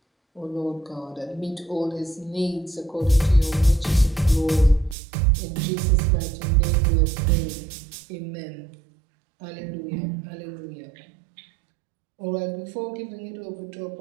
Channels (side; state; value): left; drops out; at 5.0 s